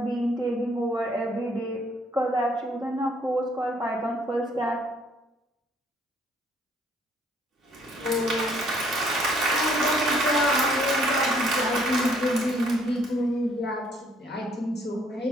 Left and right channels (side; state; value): both; normal; correlation 0.64